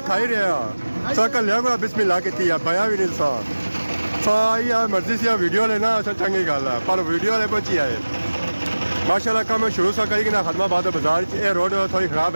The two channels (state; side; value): inverted; both; correlation -1.00